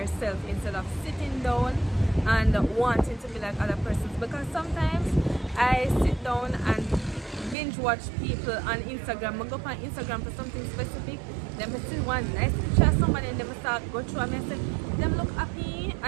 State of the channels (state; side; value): drops out; left; at 7.6 s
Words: instead of sitting down and wanting to be like other persons. Because sometimes I sit down and binge watch people on Instagram. I go on Instagram for something specific, then I see one nice picture of somebody and then I start go through and I say, them look happy,